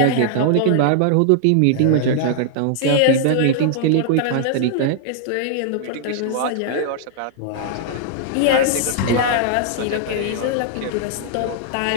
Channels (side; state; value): both; different; correlation -0.01